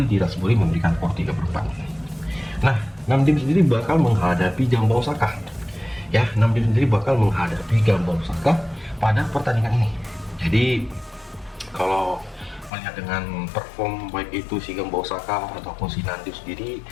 di Ratsbury memberikan por 3/4. Nah, 6 tim sendiri bakal menghadapi Jambau Osaka ya, 6 tim sendiri bakal menghadapi Jambau Osaka pada pertandingan ini. Jadi kalau melihat dengan perform baik itu si Jambau Osaka ataupun si Nandu sendiri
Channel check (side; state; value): right; drops out; at 12.7 s